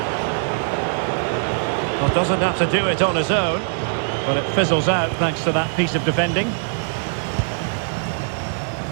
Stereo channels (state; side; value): silent; left; digital silence